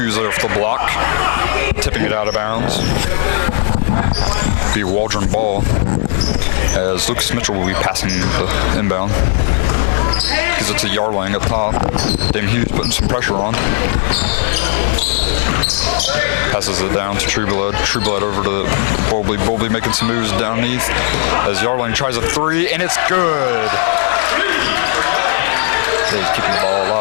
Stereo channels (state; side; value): silent; right; 70 dB below the other